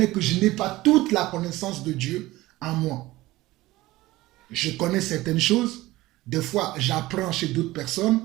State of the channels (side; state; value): left; quieter; 18.2 dB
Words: que je n'ai pas toute la connaissance de Dieu en moi. Je connais certaines choses, des fois j'apprends chez d'autres personnes,